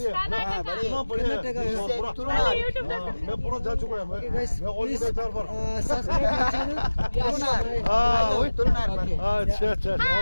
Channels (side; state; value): both; inverted; correlation -1.00